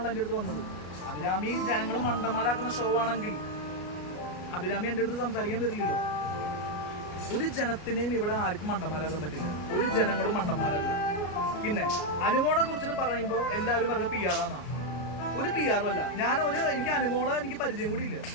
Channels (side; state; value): right; late; 33 ms